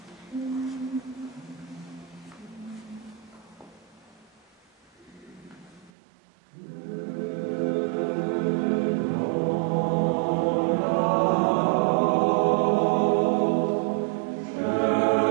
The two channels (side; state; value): left; drops out; at 5.9 s